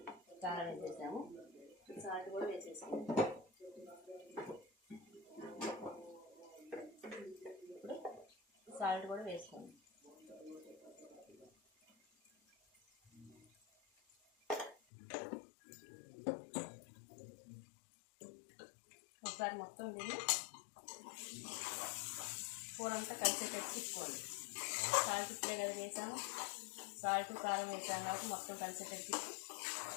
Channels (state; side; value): drops out; right; at 14.8 s